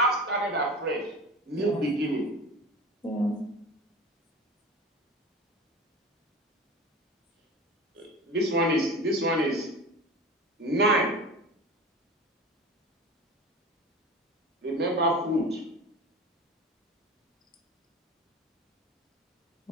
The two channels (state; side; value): normal; both; correlation 0.34